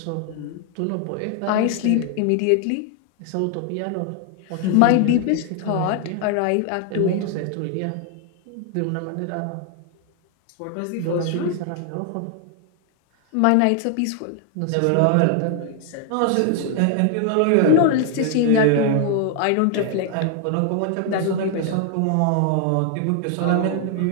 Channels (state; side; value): different; both; correlation 0.00